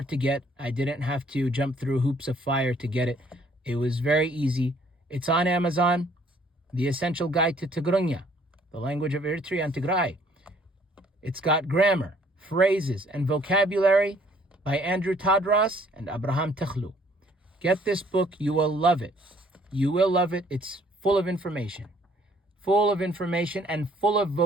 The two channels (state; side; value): normal; both; correlation 0.61